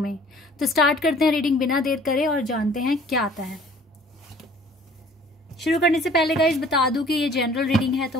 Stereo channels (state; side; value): normal; both; correlation 0.53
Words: तो स्टार्ट करते हैं रीडिंग बिना देर करे और जानते हैं क्या आता है। शुरू करने से पहले गाइस बता दूं कि ये जनरल रीडिंग है,